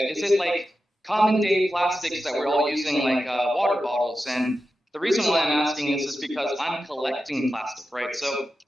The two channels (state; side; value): normal; both; correlation 0.91